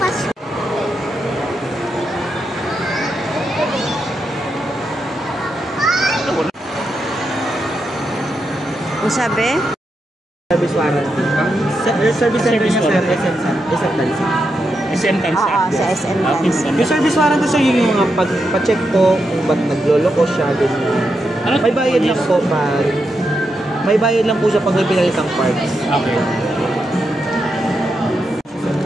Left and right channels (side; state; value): both; normal; correlation 0.85